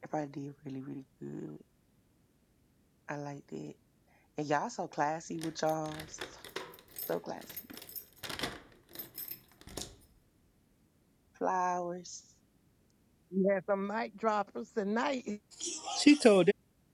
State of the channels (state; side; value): identical; both; correlation 1.00